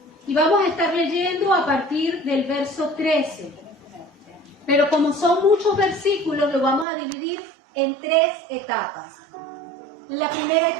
Y vamos a estar leyendo a partir del verso 13. Pero como son muchos versículos, lo vamos a dividir en 3 etapas. La primera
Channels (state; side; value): drops out; left; at 6.9 s